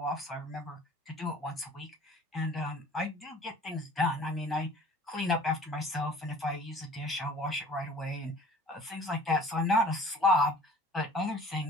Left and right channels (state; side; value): normal; both; correlation 0.49